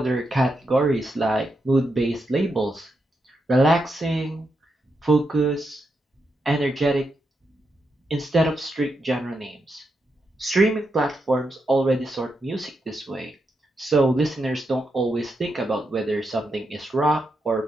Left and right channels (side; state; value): both; normal; correlation 0.84